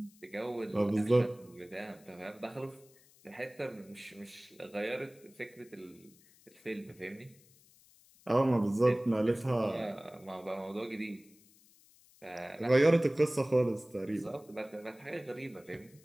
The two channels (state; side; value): noise; left; hiss, 27 dB below the sound